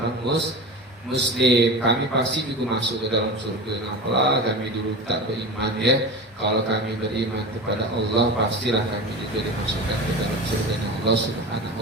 Muslim, kami pasti juga masuk ke dalam surga. Apalah kami dulu tak beriman ya. Kalau kami beriman kepada Allah, pastilah kami juga dimasukkan ke dalam surga Allah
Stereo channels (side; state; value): both; normal; correlation 0.29